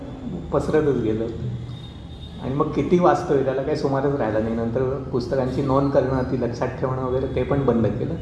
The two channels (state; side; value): identical; both; correlation 1.00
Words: पसरतच गेलं. आणि मग किती वाचतोय त्याला काही सुमारच राहिला नाही. नंतर पुस्तकांची नोंद करणं, ती लक्षात ठेवणं वगैरे ते पण बंद केलं.